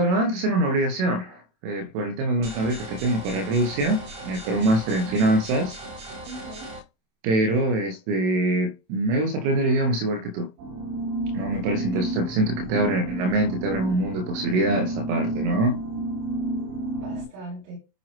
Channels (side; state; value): left; late; 27 ms